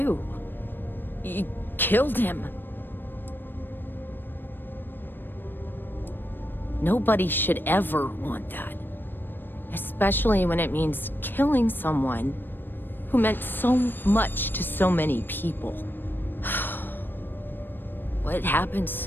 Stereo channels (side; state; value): right; late; 0.095 ms